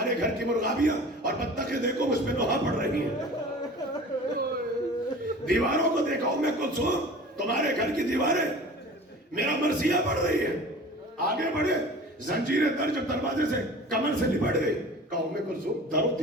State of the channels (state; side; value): normal; both; correlation 0.41